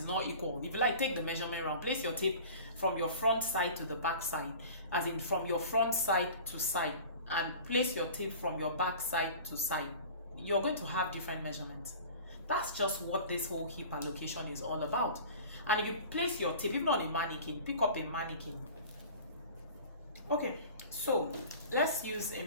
not equal. If you like, take the measurement round, place your tape from your front side to the back side, as in from your front side to side, and place your tape from your back side to side. You're going to have different measurements. That's just what this whole hip allocation is all about. And if you place your tape, even on a mannequin, pick up a mannequin. Okay, so let's use a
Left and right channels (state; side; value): inverted; both; correlation -0.40